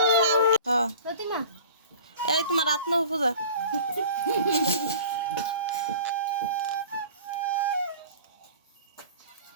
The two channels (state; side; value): inverted; both; correlation -0.43